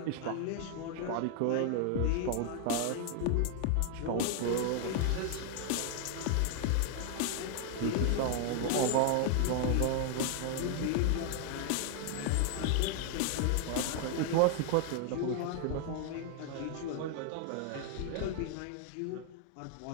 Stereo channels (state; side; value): different; both; correlation 0.00